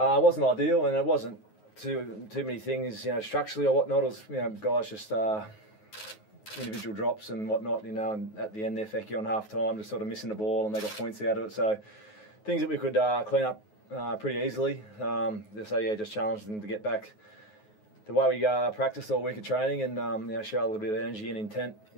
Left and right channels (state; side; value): late; right; 9.4 ms